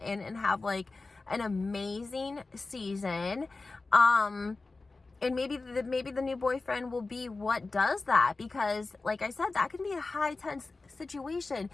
and have like an amazing season. And maybe the new boyfriend will be what does that, because like I said, that can be a high tense situation.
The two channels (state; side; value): quieter; right; 3.6 dB